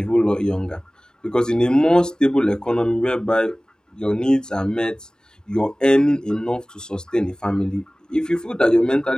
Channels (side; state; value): both; normal; correlation 0.98